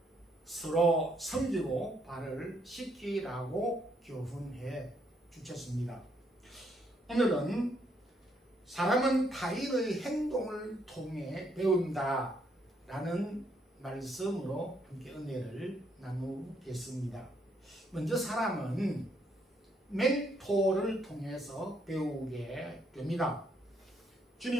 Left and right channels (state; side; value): normal; both; correlation 0.72